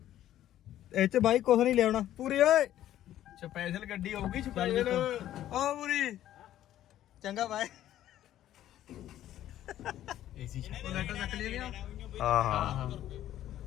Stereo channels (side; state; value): right; quieter; 12.6 dB